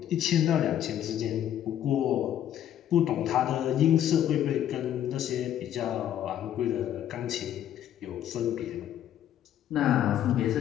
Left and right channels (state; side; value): quieter; right; 10.9 dB